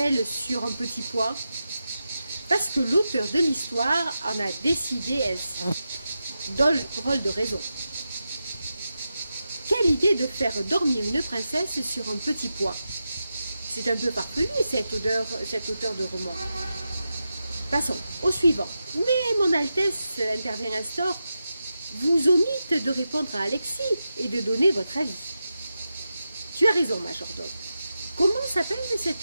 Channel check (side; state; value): both; inverted; correlation -0.90